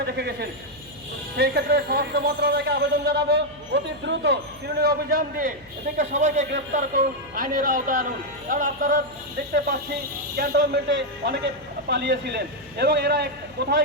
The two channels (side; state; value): left; noise; hum, 24 dB below the sound